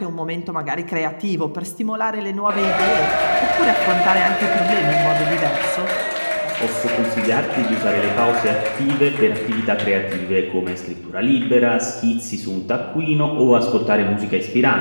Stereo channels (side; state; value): both; inverted; correlation -1.00